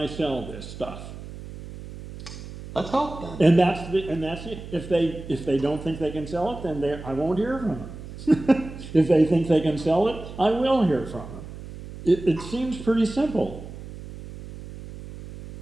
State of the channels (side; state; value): right; noise; hum, 13 dB below the sound